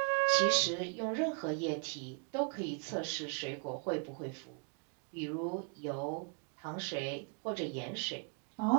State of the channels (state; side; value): quieter; left; 38.4 dB